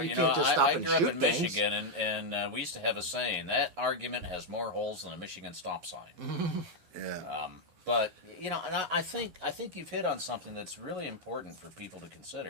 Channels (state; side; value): late; left; 12 ms